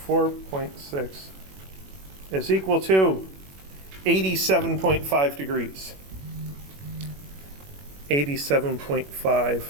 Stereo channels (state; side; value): late; left; 21 ms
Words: is equal to 87.5 degrees. 87.5